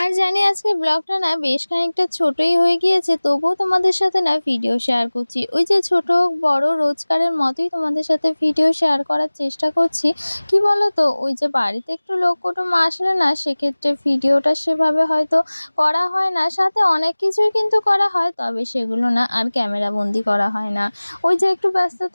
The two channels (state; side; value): inverted; both; correlation -1.00